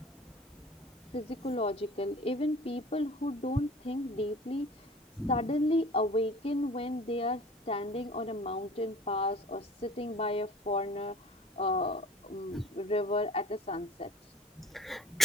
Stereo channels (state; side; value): normal; both; correlation 0.44